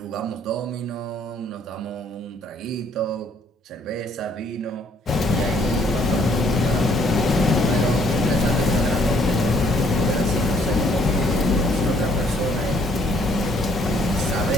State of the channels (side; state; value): both; normal; correlation 0.64